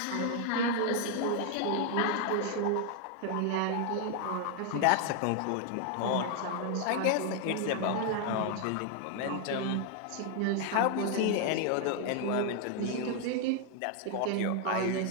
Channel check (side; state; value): both; different; correlation 0.00